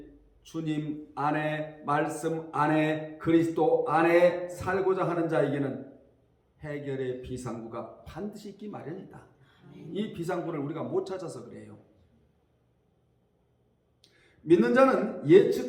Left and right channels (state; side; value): identical; both; correlation 1.00